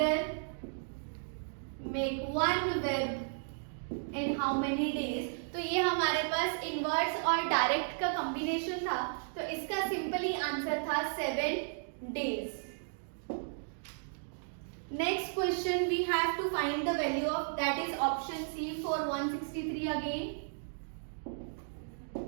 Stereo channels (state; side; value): silent; left; digital silence